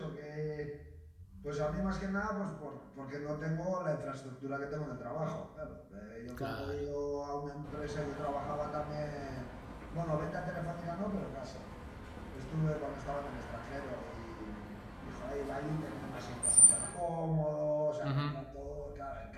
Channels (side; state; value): both; identical; correlation 1.00